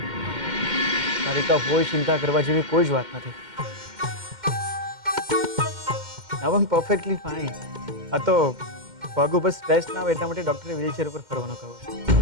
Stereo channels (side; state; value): left; late; 2.1 ms